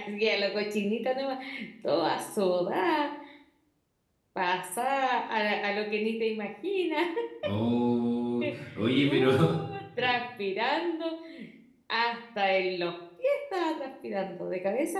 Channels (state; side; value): identical; both; correlation 1.00